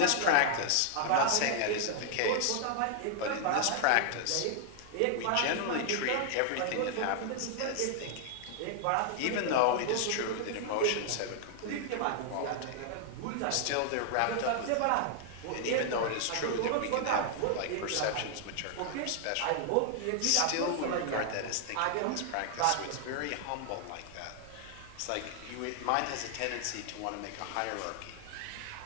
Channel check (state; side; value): different; both; correlation 0.00